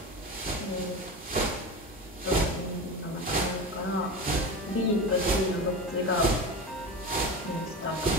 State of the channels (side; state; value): both; normal; correlation 0.26